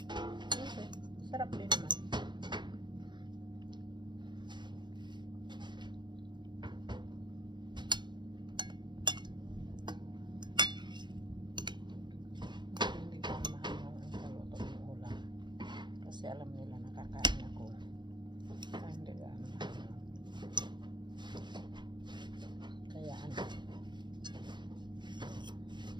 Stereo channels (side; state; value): left; late; 0.22 ms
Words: Okay. Sarap din naman. Hindi ko mahal ang kaluto ng ulam. Kasi alam nila nakakain ako. Kaya hindi ka mahal. Kaya ano.